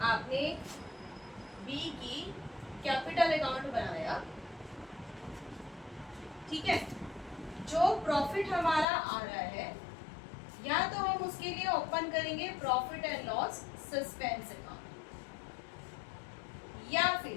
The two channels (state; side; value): drops out; right; at 8.8 s